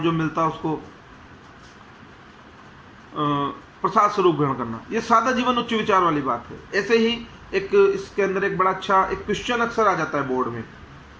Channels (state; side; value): identical; both; correlation 1.00